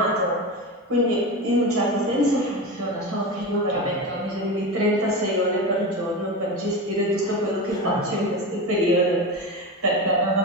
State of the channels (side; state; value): both; normal; correlation 0.23